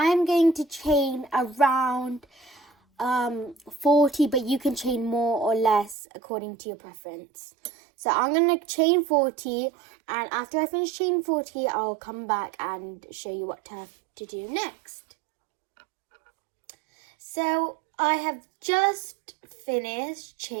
going to chain around 40, but you can chain more or less according to your preference. So I'm going to chain 40, and after I finish chain 40, I'll come back and show you what to have to do next. So I have just finished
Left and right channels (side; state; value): left; drops out; at 6.0 s